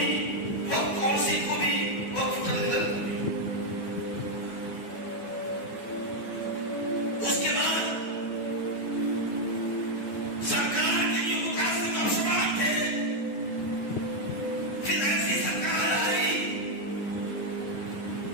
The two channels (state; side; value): late; right; 9.4 ms